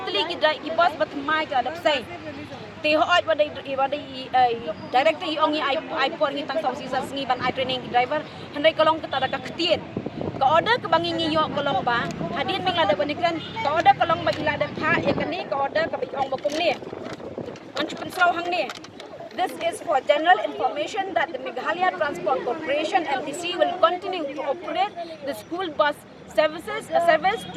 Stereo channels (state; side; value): identical; both; correlation 1.00